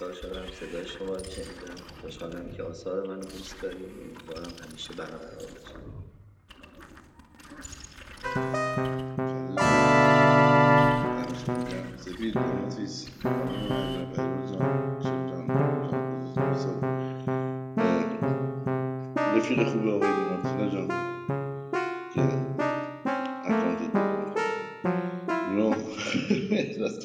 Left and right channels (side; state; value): both; identical; correlation 1.00